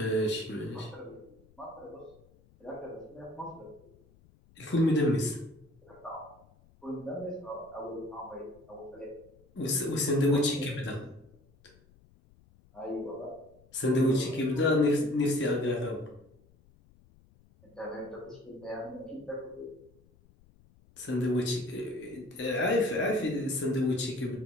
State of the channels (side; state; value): left; noise; rumble, 28 dB below the sound